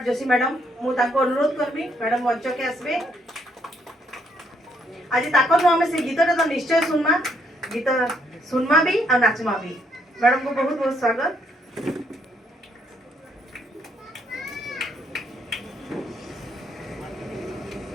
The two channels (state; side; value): normal; both; correlation 0.71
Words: जोशी मैडम मु ताको अनुरोध करबी मैडम मंच के आसबे। आज ताकर हम से गीतटा तो निश्चय सुनमा गीत सुनमा भी और नाचमा भी। मैडम को बहुत बहुत स्वागत।